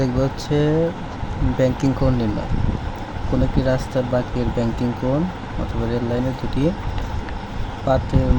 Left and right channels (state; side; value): identical; both; correlation 1.00